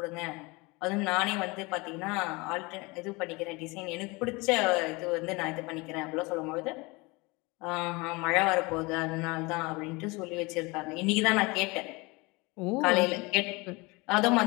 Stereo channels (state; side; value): quieter; right; 25.4 dB